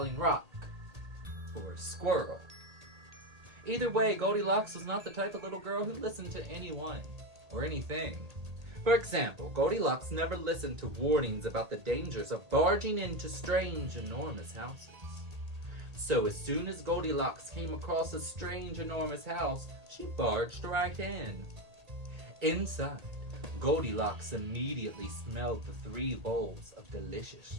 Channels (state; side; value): late; left; 1.8 ms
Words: rock or a squirrel. Either way, Goldilocks was not the type of little girl who listened to anyone or anything. For example, Goldilocks never listened to warnings about the dangers of barging into strange, enormous houses. So as soon as Goldilocks came across a strange, enormous house, she barged right in. Inside, Goldilocks immediately smelled the 3 bowls of delicious